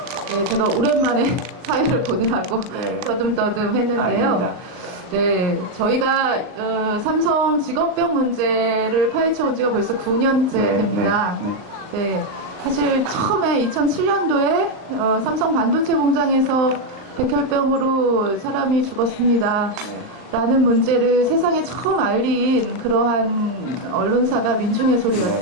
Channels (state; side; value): late; left; 39 ms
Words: 네, 제가 오랜만에 사회를 보느라고 떠듬떠듬 했는데요. 아닙니다. 네, 저희가 삼성 직업병 문제를 파헤쳐온 지가 벌써 9년째 됩니다. 네, 사실 처음에 2007년도에 삼성 반도체 공장에서 백혈병으로 사람이 죽었습니다. 라는 문제를 세상에 처음 알린 그러한 언론사가 민중의